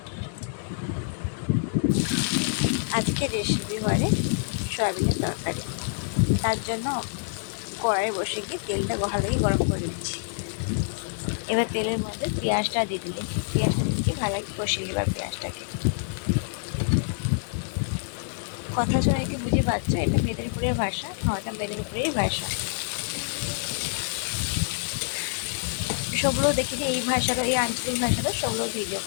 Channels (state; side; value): silent; right; digital silence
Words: আজকে রেসিপি হয় সয়াবিনের তরকারি। তার জন্য কড়াই বসে গিয়ে তেলটা ভালোই গরম করে দিচ্ছি। এবার তেলের মধ্যে পেঁয়াজটা দিয়ে দিলে পেঁয়াজটা দিয়ে ভালো কষিয়ে এবার পেঁয়াজটাকে। কথা শুনে কি বুঝে পাচ্ছ, এটা মেদিনীপুরের ভাষা। এটা মেদিনীপুরের ভাষা। সবগুলো দেখি যে এই ভাষারও, এই আঞ্চলিক ভাষারও সবগুলো ভিডিও